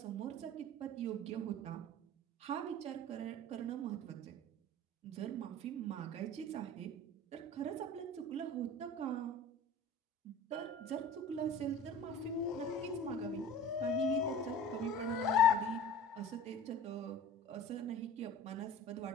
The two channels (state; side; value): normal; both; correlation 0.40